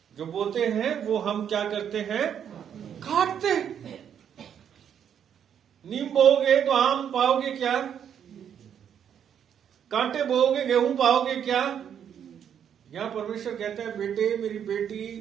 जो बोते हैं वो हम क्या करते हैं? काटते। नीम बोओगे तो आम पाओगे क्या? कांटे बोओगे गेहूं पाओगे क्या? यहां परमेश्वर कहता है, बेटे मेरी बेटी,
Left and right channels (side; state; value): left; quieter; 8.7 dB